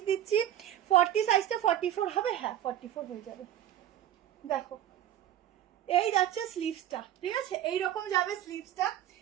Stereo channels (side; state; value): left; quieter; 11.6 dB